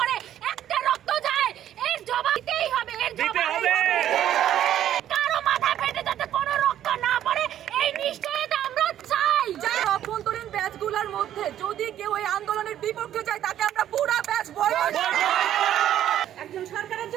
একটা রক্ত যায়, এর জবাব দিতেই হবে। এর জবাব কারো মাথা ফেটে যাতে কোনো রক্ত না পড়ে, এই নিশ্চয়তা আমরা চাই। যারা অভ্যন্তরীণ ব্যাচগুলোর মধ্যে যদি কেউ এই আন্দোলনের বিপক্ষে যায়, তাকে আমরা পুরো ব্যাচ বয়কট করব। একজন সরকারের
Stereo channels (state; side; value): quieter; left; 11.4 dB